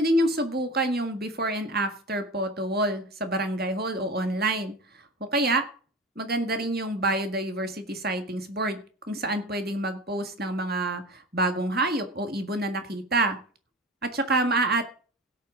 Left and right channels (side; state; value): both; normal; correlation 0.32